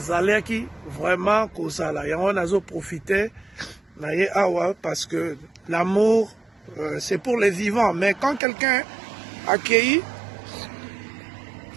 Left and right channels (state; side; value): drops out; left; at 8.4 s